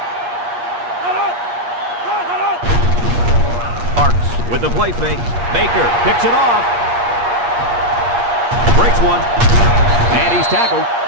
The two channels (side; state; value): left; late; 8.4 ms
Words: With the play fake, Baker picks it off. Breaks one. And he's tackled.